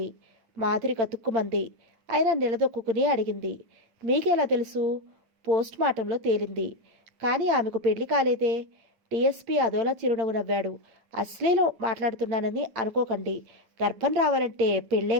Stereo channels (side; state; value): left; late; 8.8 ms